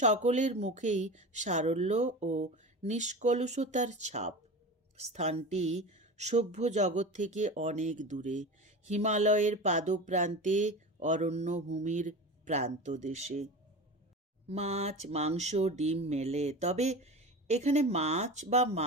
মুখেই সারল্য ও নিষ্কলুষতার ছাপ। স্থানটি সভ্য জগৎ থেকে অনেক দূরে, হিমালয়ের পাদপ্রান্তে, অরণ্যভূমির প্রান্তদেশে। মাছ, মাংস, ডিম মেলে, তবে এখানে মাছ বা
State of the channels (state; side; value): normal; both; correlation 0.30